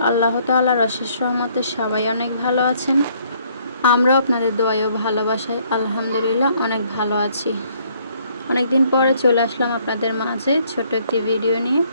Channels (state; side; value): inverted; both; correlation -0.66